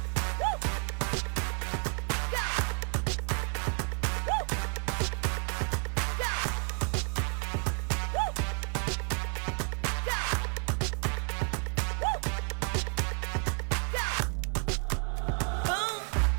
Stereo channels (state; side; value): quieter; left; 39.5 dB